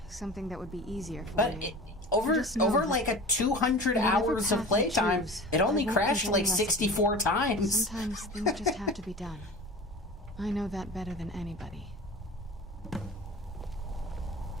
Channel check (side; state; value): both; normal; correlation 0.36